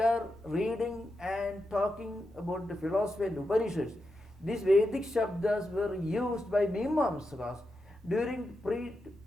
reading and talking about the philosophy and Upanishads, these Vedic Shabdas were used by Mimamsakas during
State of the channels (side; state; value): both; normal; correlation 0.87